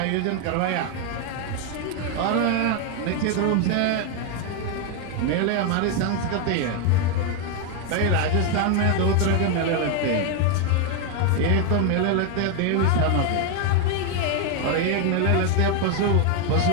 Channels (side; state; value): both; different; correlation 0.01